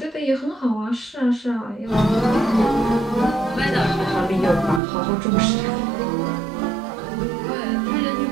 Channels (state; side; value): drops out; left; at 4.8 s